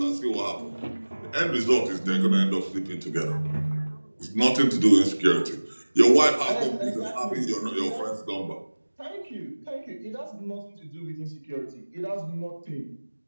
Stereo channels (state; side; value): inverted; both; correlation -1.00